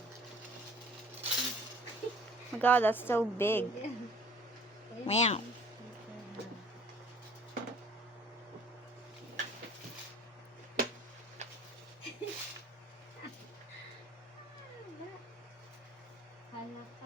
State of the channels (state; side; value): normal; both; correlation 0.52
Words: my god, that's so big. Wow. Hala ka,